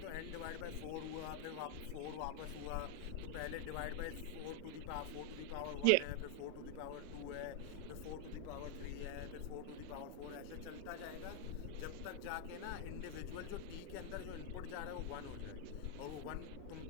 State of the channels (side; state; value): both; different; correlation 0.00